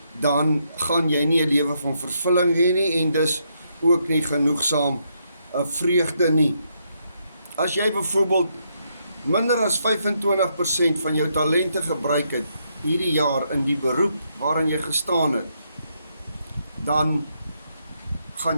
dan gaan jy nie 'n lewe van vervulling hê nie en dus ook nie genoegsaam vreugde nie. As jy byvoorbeeld minder as 25% van jou talente gebruik het hierdie jaar in die beroep waarin jy gestaan het, dan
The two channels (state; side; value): inverted; both; correlation -0.77